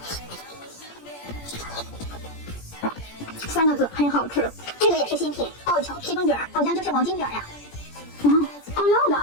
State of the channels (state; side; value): late; right; 17 ms